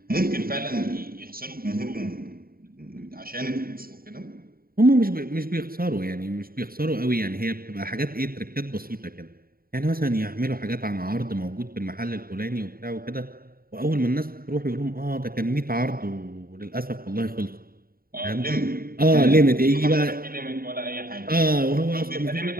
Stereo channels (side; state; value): left; late; 0.43 ms